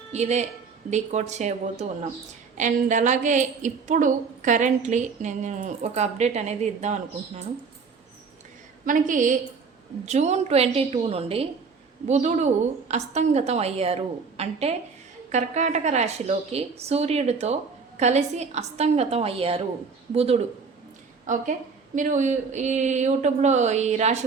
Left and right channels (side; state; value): left; quieter; 5.2 dB